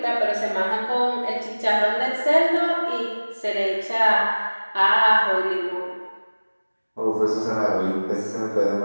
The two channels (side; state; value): both; inverted; correlation -1.00